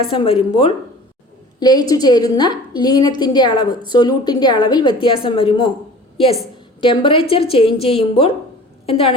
വരുമ്പോൾ ലയിച്ചു ചേരുന്ന ലീനത്തിൻ്റെ അളവ്, സൊല്യൂട്ടിൻ്റെ അളവിൽ വ്യത്യാസം വരുമോ? യെസ്. ടെമ്പറേച്ചർ ചേഞ്ച് ചെയ്യുമ്പോൾ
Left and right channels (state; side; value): normal; both; correlation 0.43